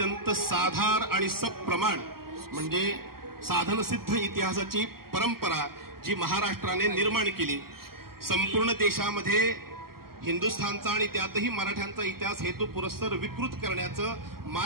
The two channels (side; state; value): left; late; 0.93 ms